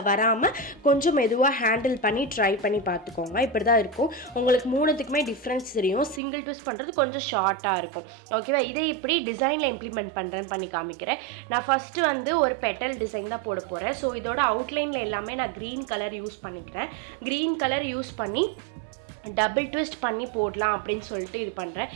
வராமல் கொஞ்சம் மெதுவாக ஹேண்டில் பண்ணி ட்ரை பண்ணி பார்த்துக்கோங்க. இப்படி தான் இருக்கும். உங்களுக்கு 3த்துக்குமே டிஃப்ரென்ஸ் தெரியும். சிங்கிள் ட்விஸ்ட் பண்ணுறது கொஞ்சம் ஷார்ட் இருக்கும். ஓகேவா? இதை இப்படி டிசைனில் இம்ப்ளிமெண்ட் பண்ணுறேன்னு பண்ணி காமிக்கிறேன். நான் ஃபஸ்ட்டு வந்து ஒரு பெட்டல் டிசைன் தான் போட போகிறேன். ஸோ இதோட அவுட்லைனில் எல்லாமே நான் க்ரீன் கலர் யூஸ் பண்ணிக்கிறேன். க்ரீன் கலர் யூஸ் பண்ணி டபுள் ட்விஸ்ட் பண்ணி போடலாம் அப்படின்னு சொல்லிட்டு இது பண்ணுறேன்.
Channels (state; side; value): drops out; left; at 6.2 s